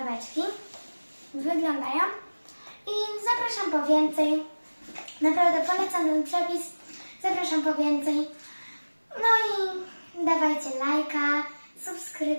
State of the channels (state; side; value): inverted; both; correlation -1.00